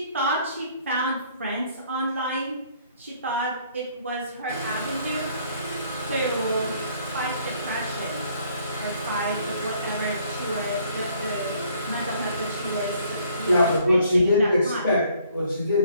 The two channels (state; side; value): inverted; both; correlation -0.63